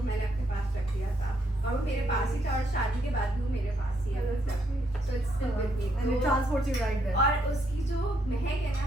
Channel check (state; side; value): normal; both; correlation 0.75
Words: मैंने अपने पास रख दिया था और वो मेरे पास ही था और शादी के बाद भी वो मेरे पास ही है so it's still with me and it transports you right there और उसकी जो महक है